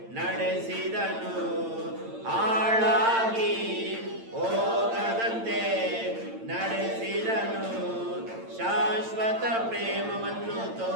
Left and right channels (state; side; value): late; left; 8.8 ms